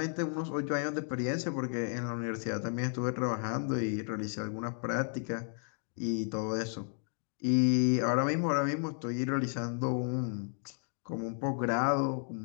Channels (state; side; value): silent; right; 55 dB below the other